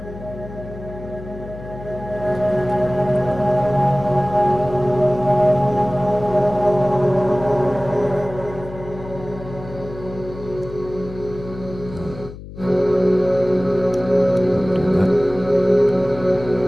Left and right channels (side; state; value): left; noise; hum, 14 dB below the sound